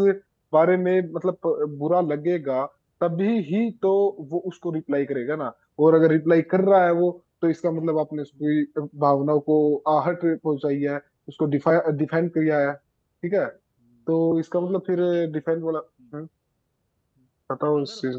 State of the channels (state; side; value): identical; both; correlation 1.00